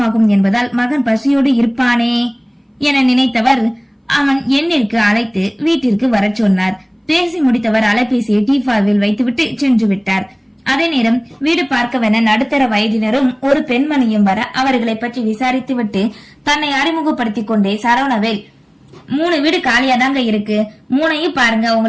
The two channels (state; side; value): identical; both; correlation 1.00